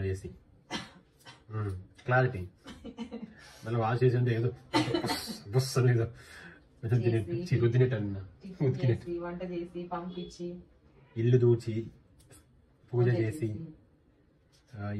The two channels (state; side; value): identical; both; correlation 1.00